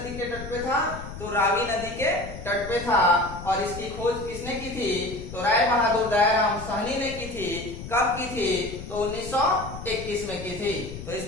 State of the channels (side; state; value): left; noise; rumble, 11 dB below the sound